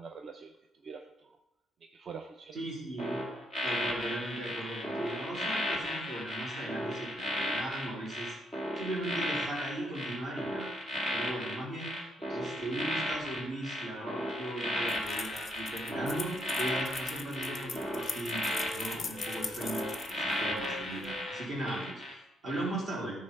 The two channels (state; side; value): normal; both; correlation 0.74